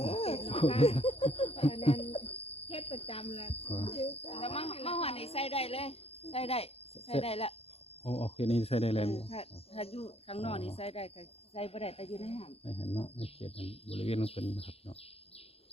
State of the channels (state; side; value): late; right; 0.29 ms